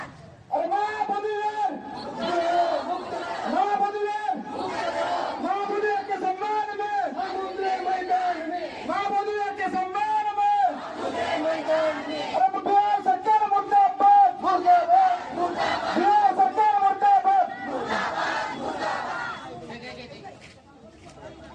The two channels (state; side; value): identical; both; correlation 1.00